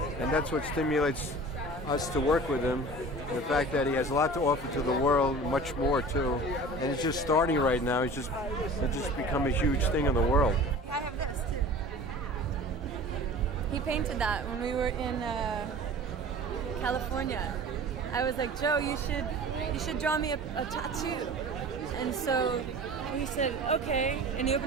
and that's what stimulates us to work with him. The fact that he has a lot to offer to the world, much more too, and it's just starting right now. It's just become a huge thing in the world. I have this too. He painted that when we were in California. I was like, Joe, you should draw me a tattoo. And so he said, okay. And he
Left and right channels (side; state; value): both; normal; correlation 0.40